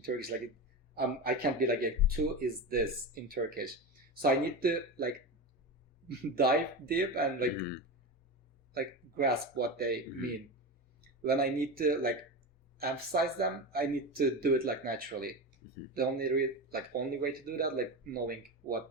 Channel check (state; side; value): normal; both; correlation 0.22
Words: Turkish. Like, I can't be like, two is this in Turkish. So I need to, like, dive deep and, like, like, grasp what they mean. When I need to, like, emphasize them, I need to do it, like, naturally. The only way to do that, like, knowing